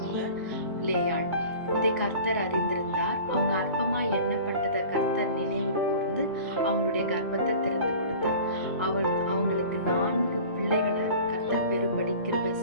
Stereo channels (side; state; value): both; inverted; correlation -0.42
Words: லேயாள். இதை கர்த்தர் அறிந்திருந்தார். அவங்க அற்பமா எண்ணப்பட்டதை கர்த்தர் நினைவு கூர்ந்து அவங்களுடைய கர்ப்பத்தை திறந்து கொடுத்தார். அவங்களுக்கு 4 பிள்ளைகளை கர்த்தர் பெரும்படி கிருபை